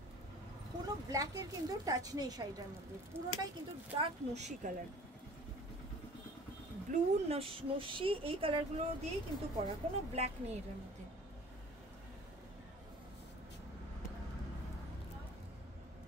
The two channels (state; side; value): normal; both; correlation 0.47